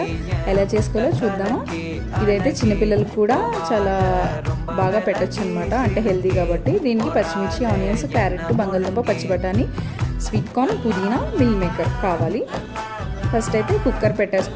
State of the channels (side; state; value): both; identical; correlation 1.00